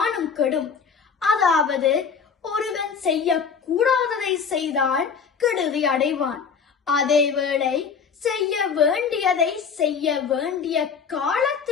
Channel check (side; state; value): right; quieter; 6.2 dB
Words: கெடும். அதாவது ஒருவன் செய்ய கூடாததை செய்தால் கெடுதி அடைவான். அதேவேளை செய்ய வேண்டியதை செய்ய வேண்டிய